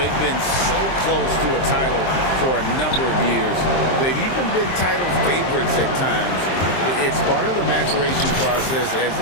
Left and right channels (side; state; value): right; late; 23 ms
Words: been so close to a title for a number of years. They've even been title favorites at times. It's part of the maturation process, as